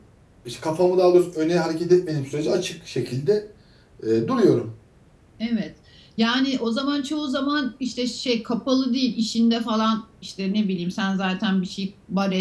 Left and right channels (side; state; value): both; identical; correlation 1.00